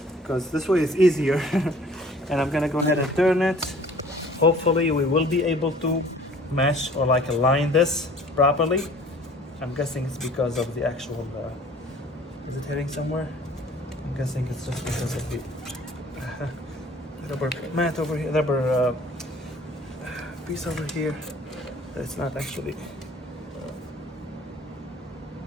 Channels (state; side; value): normal; both; correlation 0.51